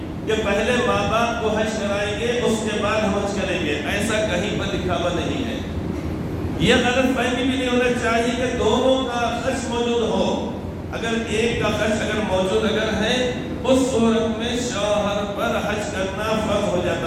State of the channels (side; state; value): both; identical; correlation 1.00